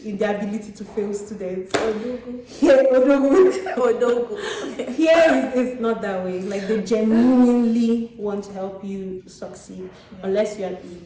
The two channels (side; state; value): both; identical; correlation 1.00